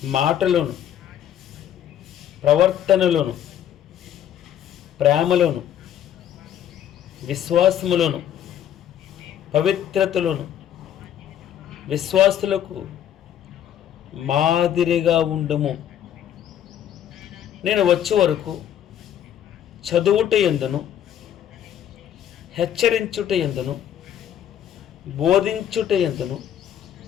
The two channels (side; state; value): right; quieter; 10.3 dB